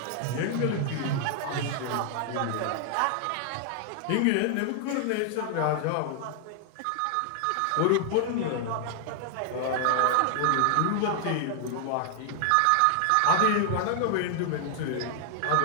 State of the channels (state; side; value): different; both; correlation 0.00